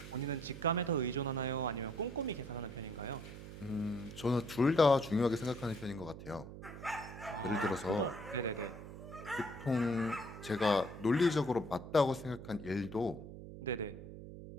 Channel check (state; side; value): noise; right; hum, 12 dB below the sound